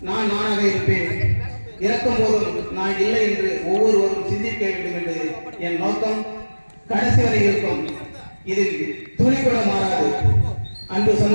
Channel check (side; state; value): both; inverted; correlation -1.00